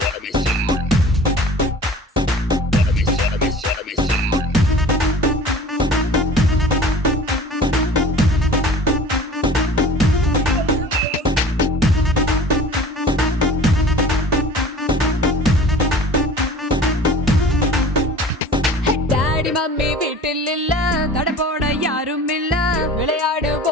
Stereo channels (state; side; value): normal; both; correlation 0.43